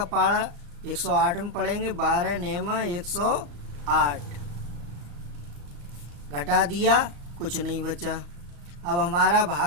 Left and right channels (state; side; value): late; left; 34 ms